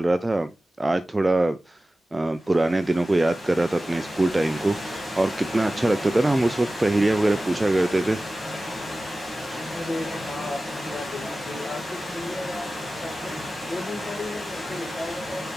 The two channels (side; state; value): both; normal; correlation 0.96